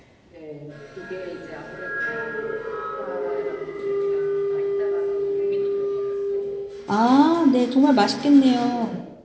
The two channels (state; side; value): identical; both; correlation 1.00